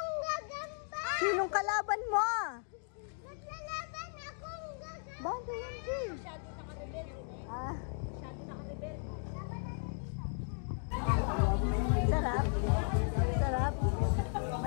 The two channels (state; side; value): silent; right; 54 dB below the other